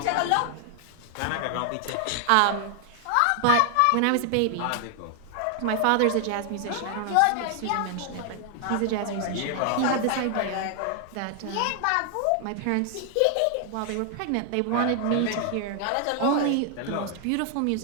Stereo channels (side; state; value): both; different; correlation 0.00